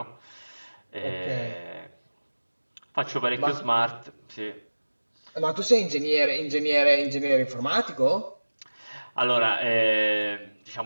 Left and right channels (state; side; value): inverted; both; correlation -1.00